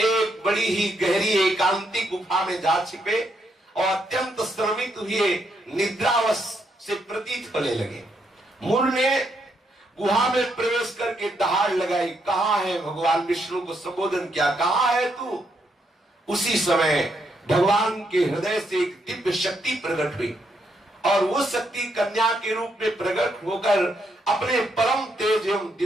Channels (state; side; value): normal; both; correlation 0.77